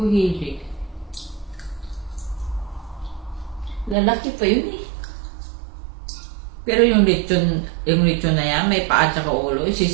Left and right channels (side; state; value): left; drops out; at 4.0 s